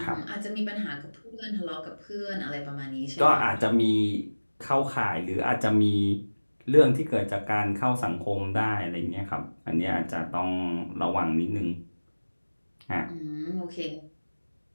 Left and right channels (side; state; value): both; inverted; correlation -1.00